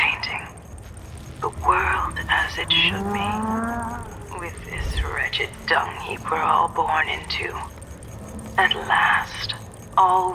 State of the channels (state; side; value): identical; both; correlation 1.00